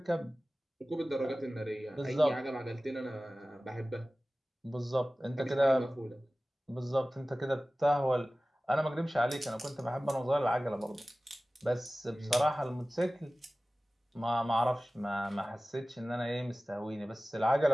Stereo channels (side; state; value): both; normal; correlation 0.97